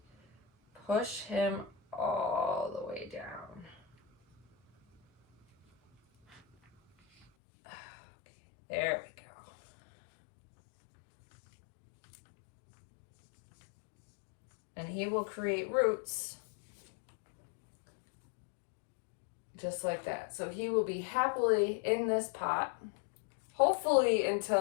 push him all the way down. Okay, there we go. And he will create roots just like that. So he will be happily in this pot, hopefully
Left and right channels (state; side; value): drops out; right; at 7.2 s